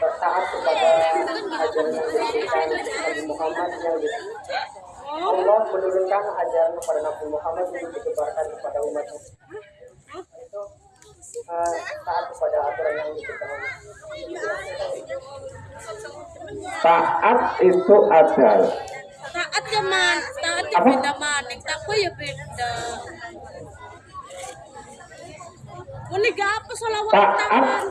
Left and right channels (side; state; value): both; identical; correlation 1.00